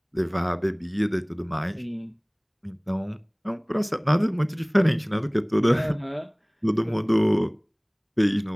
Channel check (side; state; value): both; identical; correlation 1.00